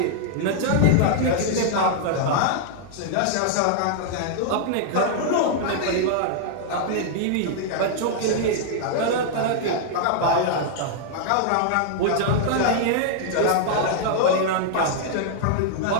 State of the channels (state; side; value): different; both; correlation -0.01